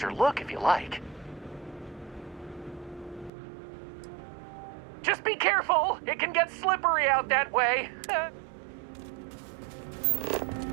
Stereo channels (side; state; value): left; drops out; at 3.3 s